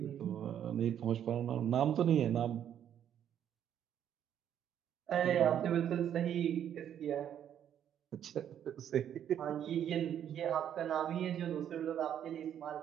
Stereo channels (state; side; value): quieter; left; 9.8 dB